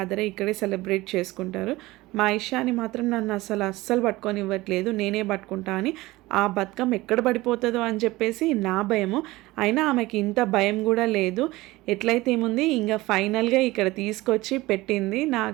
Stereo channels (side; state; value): left; quieter; 19.4 dB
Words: అయ్యి ఇక్కడే సెలబ్రేట్ చేసుకుంటారు. మా ఇషాని మాత్రం నన్ను అస్సలు పట్టుకొని ఇవ్వట్లేదు, నేనే పట్టుకుంటా అని. ఆ బతుకమ్మ ఎక్కడ పడిపోతుందో అని చెప్పేసి నా భయము. అయినా ఆమెకి ఇంత భయం కూడా లేదు. ఎట్లయితే ఏముంది, ఇంకా ఫైనల్గా ఇక్కడ తీసుకొచ్చి పెట్టింది.